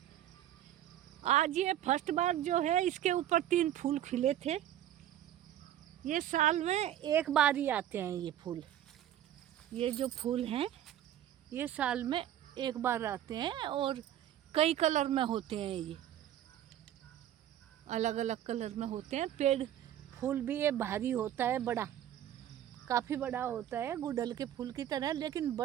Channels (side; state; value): left; quieter; 11.7 dB